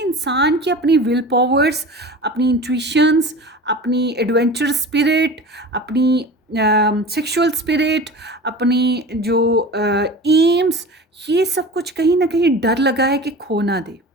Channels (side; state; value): both; normal; correlation 0.35